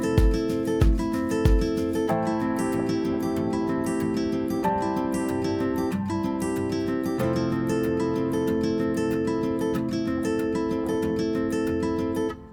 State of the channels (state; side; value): identical; both; correlation 1.00